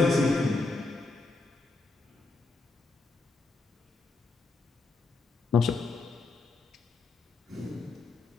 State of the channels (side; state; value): right; quieter; 3.5 dB